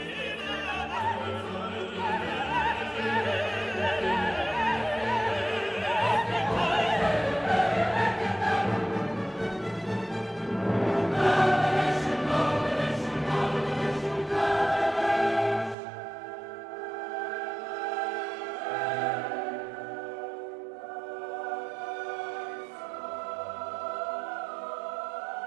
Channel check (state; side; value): drops out; left; at 15.8 s